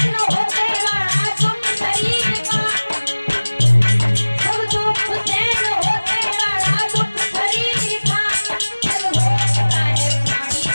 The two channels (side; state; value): both; inverted; correlation -1.00